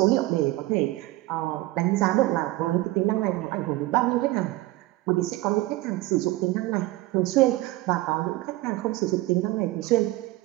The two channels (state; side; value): quieter; left; 18.5 dB